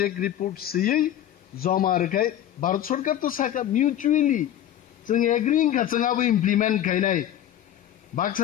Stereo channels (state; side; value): quieter; right; 11.4 dB